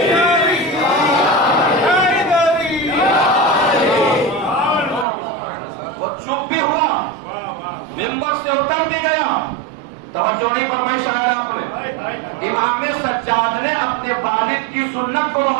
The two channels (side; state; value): left; drops out; at 5.1 s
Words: وہ چپ بھی ہوا، منبر سے اتر بھی گیا. توجہ نہیں فرمائی شاید آپ نے. امام سجاد نے اپنے والد کی سنت کو